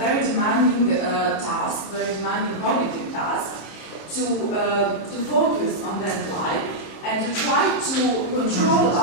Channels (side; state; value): right; late; 27 ms